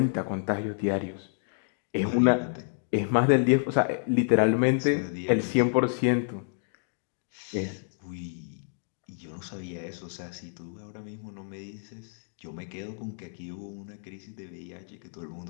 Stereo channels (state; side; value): silent; right; digital silence